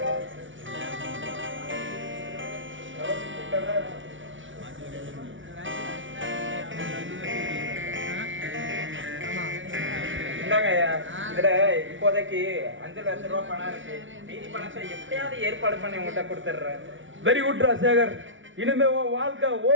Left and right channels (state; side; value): late; left; 0.56 ms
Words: இந்தாங்க ஐயா, இதுல இப்போதைக்கு 5 லட்ச ரூபா பணம் இருக்கு. மீதி பணத்தை எப்படியாவது ஏற்பாடு பண்ணி உங்கள்கிட்ட கொடுத்துட்றேன். வெரி குட் ராஜசேகர், இனிமே உன் வாழ்க்கை